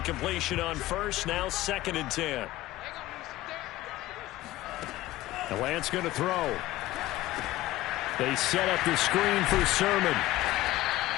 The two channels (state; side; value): quieter; right; 16.6 dB